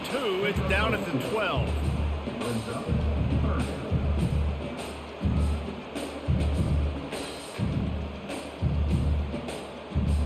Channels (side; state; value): both; identical; correlation 1.00